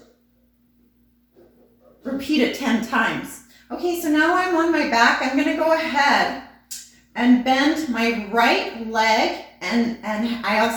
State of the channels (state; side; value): identical; both; correlation 1.00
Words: repeat it 10 times. Okay, so now I'm on my back. I'm gonna go ahead and bend my right leg, and I